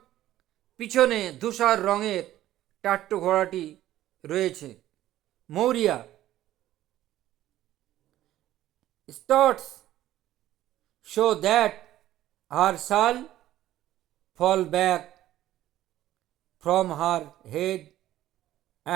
পিছনে ধূসর রঙের টাট্টু ঘোড়াটি রয়েছে। মৌরিয়া স্টার্টস শো দ্যাট হার শাল fall back from her head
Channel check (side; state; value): left; quieter; 13.7 dB